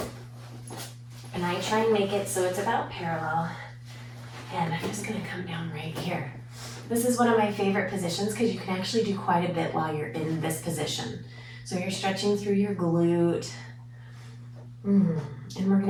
And I try and make it so it's about parallel. And I'm just going to come down right here. This is one of my favorite positions because you can actually do quite a bit while you're in this position. So you're stretching through your glute. And we're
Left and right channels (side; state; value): both; identical; correlation 1.00